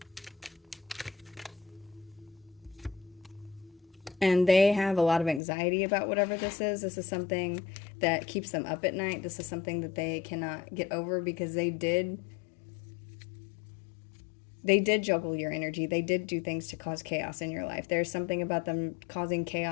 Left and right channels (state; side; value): drops out; right; at 5.4 s